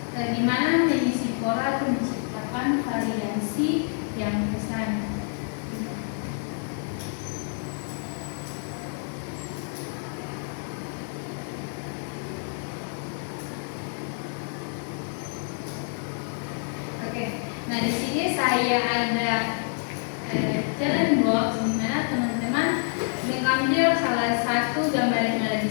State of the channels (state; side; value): silent; right; 60 dB below the other